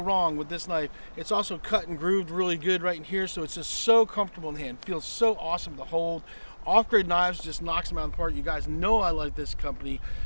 with this knife. It's also cut and grooved really good right in here, so it's just so comfortable in the hand. Feels so awesome to hold. Off-Grid Knives just knocks them out of the park. You guys know I like this company.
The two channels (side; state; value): both; inverted; correlation -1.00